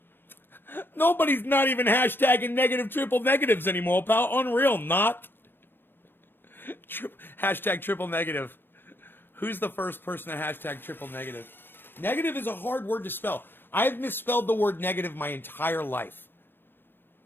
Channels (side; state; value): right; late; 0.097 ms